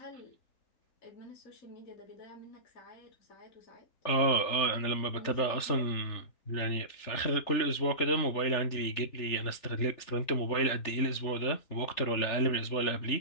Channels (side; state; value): right; late; 3.4 ms